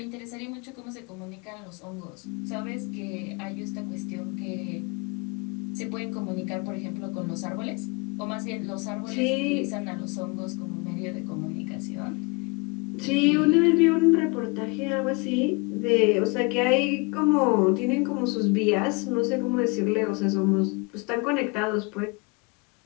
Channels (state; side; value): quieter; right; 29.0 dB